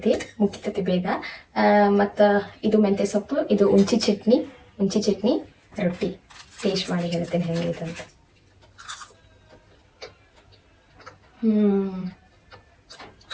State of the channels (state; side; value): identical; both; correlation 1.00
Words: ಮುಗಿತೈತಿ ಬೇಗ. ಮತ್ತು ಇದು ಮೆಂತ್ಯ ಸೊಪ್ಪು, ಇದು ಉಂಚಿ ಚಟ್ನಿ ರೊಟ್ಟಿ. ಟೇಸ್ಟ್ ಮಾಡಿ ಹೇಳ್ತೇನೆ ಹೆಂಗೈತೆ ಅಂತ.